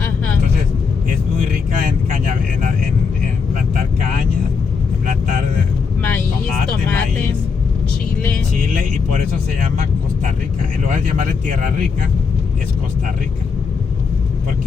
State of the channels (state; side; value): quieter; right; 5.4 dB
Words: Entonces es muy rica en plantar caña, en plantar maíz, tomate, maíz, chile, y por eso se llama Costa Rica. En lugar de llamarle Tierra Rica, es Costa Rica.